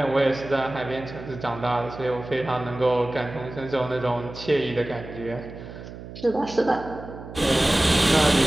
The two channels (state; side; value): noise; right; hum, 13 dB below the sound